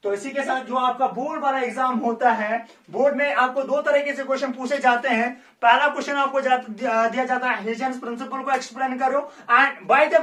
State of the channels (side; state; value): both; identical; correlation 1.00